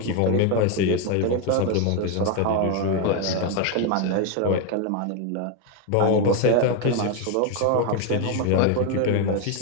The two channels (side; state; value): both; different; correlation 0.01